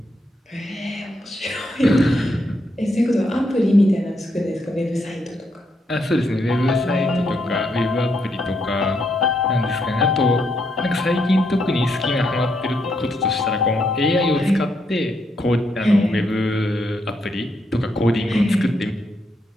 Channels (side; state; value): both; normal; correlation 0.77